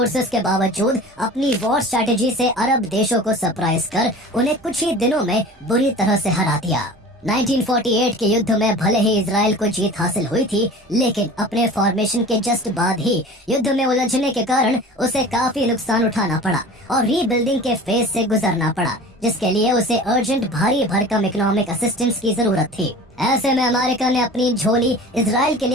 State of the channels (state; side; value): normal; both; correlation 0.40